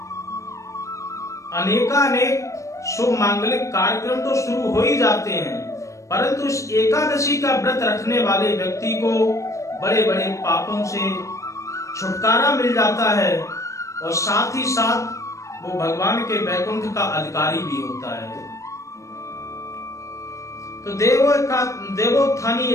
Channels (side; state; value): right; late; 0.15 ms